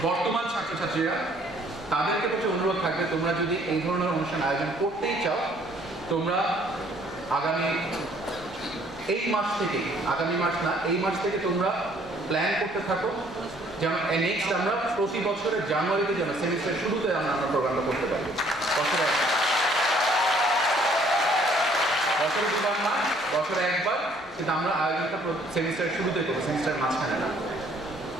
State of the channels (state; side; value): normal; both; correlation 0.61